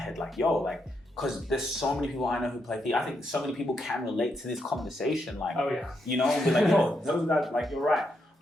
Like, yo, like, because there's so many people I know who play FIFA. I think so many people can relate to this conversation. Like, oh yeah. You know, be like, yo, those guys, like, you're right.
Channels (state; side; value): normal; both; correlation 0.80